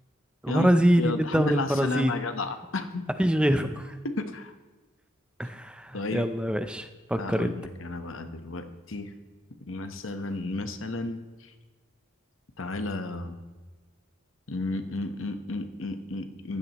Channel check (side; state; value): both; normal; correlation 0.82